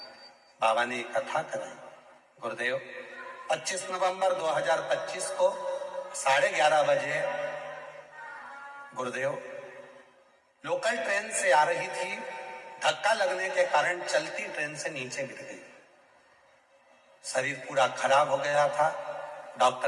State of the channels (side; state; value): both; identical; correlation 1.00